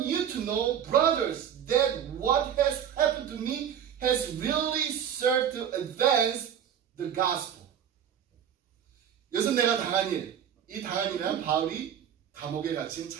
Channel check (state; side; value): quieter; left; 9.0 dB